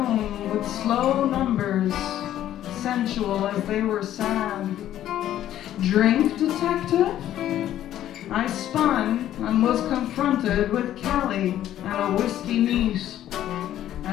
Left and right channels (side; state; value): right; quieter; 12.1 dB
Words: with slow numbers, sensual as they were sad. "Drink, detective?" I spun and was confronted with Callie and a whiskey neat.